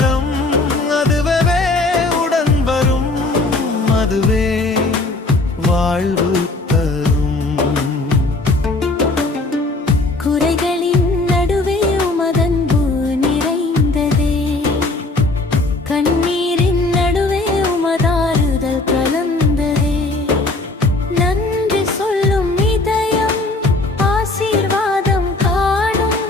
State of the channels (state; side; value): quieter; right; 3.1 dB